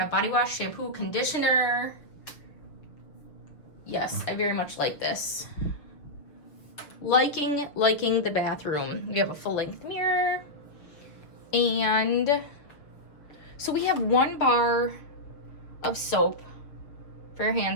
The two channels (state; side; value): late; right; 6.3 ms